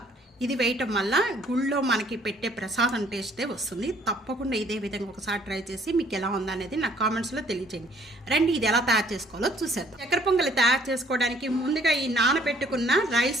ఇది వేయటం వల్ల గుళ్ళో మనకి పెట్టే ప్రసాదం టేస్టే వస్తుంది. తప్పకుండా ఇదే విధంగా ఒకసారి ట్రై చేసి మీకు ఎలా ఉందనేది నా కామెంట్స్లో తెలియజేయండి. రండి, ఇది ఎలా తయారు చేసుకోవాలో చూసేద్దాం. చక్కెర పొంగలి తయారు చేసుకోవడానికి ముందుగా ఈ నానబెట్టుకున్న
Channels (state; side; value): normal; both; correlation 0.61